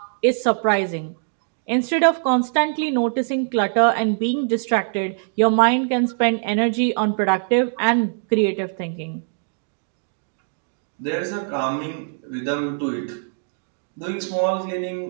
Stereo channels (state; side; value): silent; left; digital silence